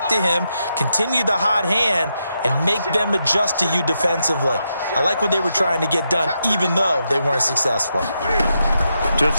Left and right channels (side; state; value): both; inverted; correlation -0.84